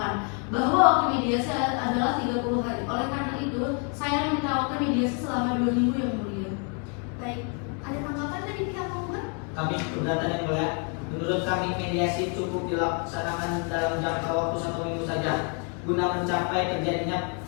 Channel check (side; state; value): right; quieter; 38.7 dB